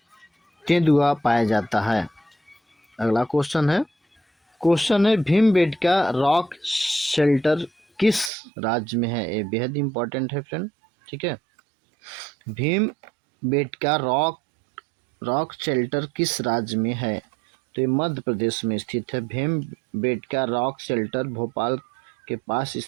तेंदुआ पाया जाता है। अगला क्वेश्चन है भीमबेटका रॉक शेल्टर किस राज्य में है? ये बेहद इम्पोर्टेंट है फ्रेंड। ठीक है, भीमबेटका रॉक शेल्टर किस राज्य में है? तो ये मध्य प्रदेश में स्थित है। भीमबेटका रॉक शेल्टर भोपाल के पास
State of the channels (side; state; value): left; drops out; at 8.3 s